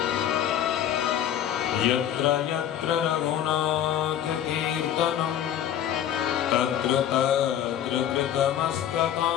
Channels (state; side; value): quieter; right; 10.4 dB